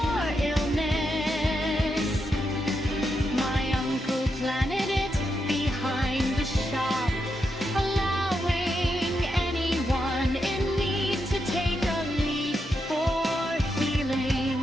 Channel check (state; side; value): normal; both; correlation 0.84